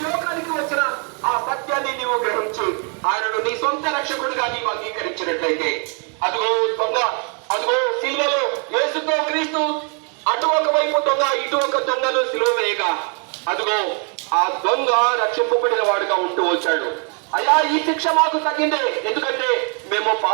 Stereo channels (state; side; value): quieter; left; 38.9 dB